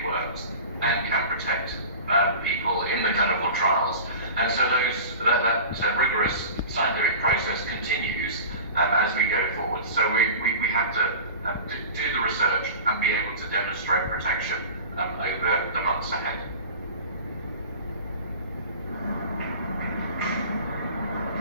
works and can protect people in the clinical trials. And so that rigorous scientific process continues as we go forward. So we have to do the research and be able to demonstrate protection over the months ahead.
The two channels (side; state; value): both; inverted; correlation -0.36